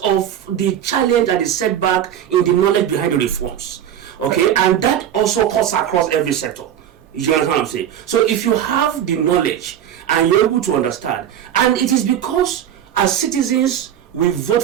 of the challenge and the setback in the knowledge behind the reforms. Okay, and that also cuts across every sector. You understand what I'm saying? So if you have the knowledge and you're able to understand, and it is because as citizens we vote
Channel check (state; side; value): quieter; left; 10.1 dB